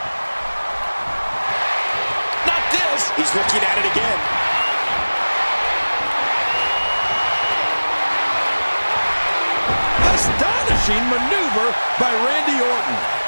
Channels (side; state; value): both; inverted; correlation -1.00